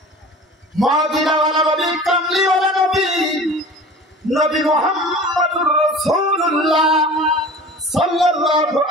মদিনাওয়ালা নবী, কামলিওয়ালা নবী, নবী মুহাম্মদুর রাসূলুল্লাহ সাল্লাল্লাহু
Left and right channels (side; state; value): both; normal; correlation 0.39